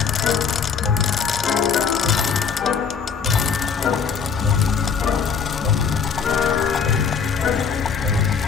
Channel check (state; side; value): quieter; right; 6.3 dB